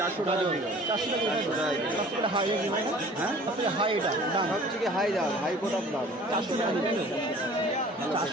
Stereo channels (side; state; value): both; normal; correlation 0.48